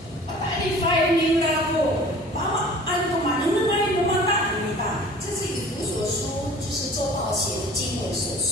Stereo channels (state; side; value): normal; both; correlation 0.46